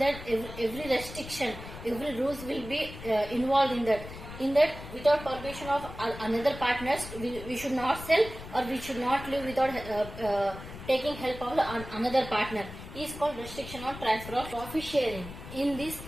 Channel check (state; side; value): noise; left; rumble, 12 dB below the sound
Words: every restriction, every rules will be involved in that. In that, without permission of another partners, we should not sell or we should not live without taking help of another partner. Is called restriction on transfer of profit sharing. In this,